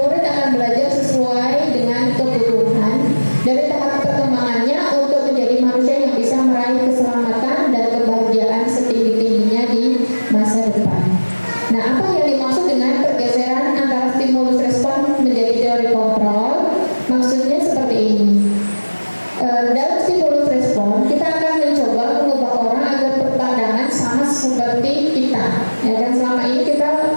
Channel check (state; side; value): inverted; both; correlation -1.00